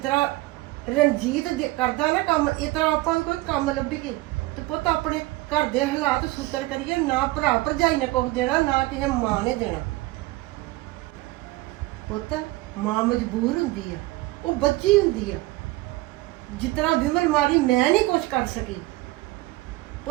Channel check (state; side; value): quieter; left; 19.6 dB